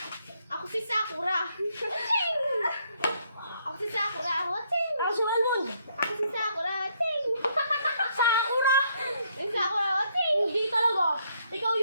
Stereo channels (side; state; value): both; inverted; correlation -0.70